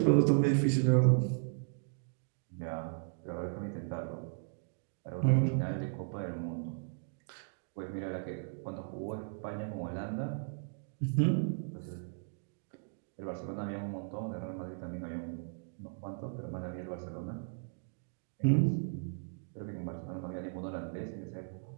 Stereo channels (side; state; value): left; silent; digital silence